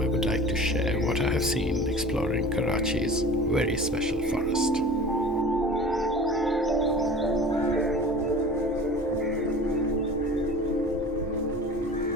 would like to share what I have seen exploring Karachi's very special forest.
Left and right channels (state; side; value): normal; both; correlation 0.40